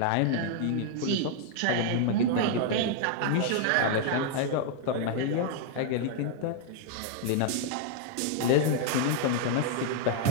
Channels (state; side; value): different; both; correlation 0.00